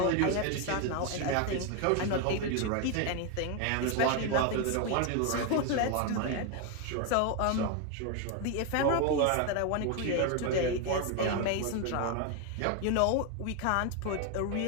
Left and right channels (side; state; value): both; different; correlation 0.01